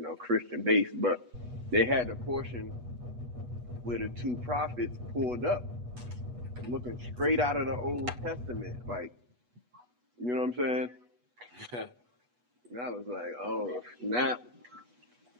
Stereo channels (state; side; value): late; left; 8.2 ms